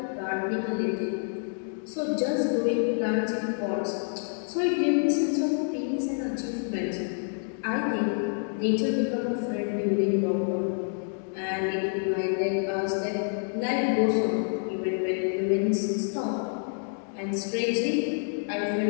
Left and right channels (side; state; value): right; silent; 56 dB below the other